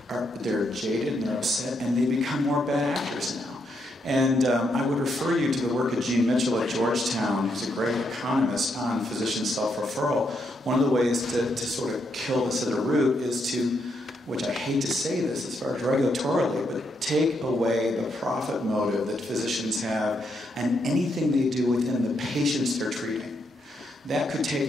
they're jaded and they're upset, and they become more bad actors now. And I would refer you to the work of Gene Mitchell at Georgetown, who's a great economist on physician self-referral. One of the ways to sort of kill this at the root is to, which I hate to say this as far as regulatorily, but take away the profit motive that physicians have and anything they do within the patients they're treating. That could take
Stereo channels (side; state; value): both; normal; correlation 0.78